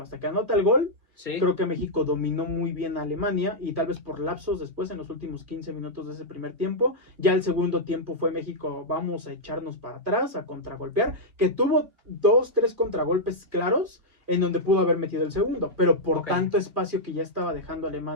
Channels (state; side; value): late; left; 2.2 ms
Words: Hasta que anota el gol, sí. Creo que México dominó muy bien a Alemania, y tal vez por lapsos después, en los últimos 15 minutos de ese primer tiempo. Ya el segundo tiempo fue México, vamos a echarnos para atrás, a contragolpear, que tuvo 2-3 contragolpes claros, en donde pudo haber metido el segundo, pero por tanto espacio que ya estaba dejando